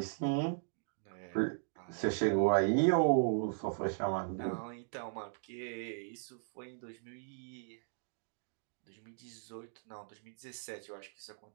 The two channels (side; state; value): left; silent; digital silence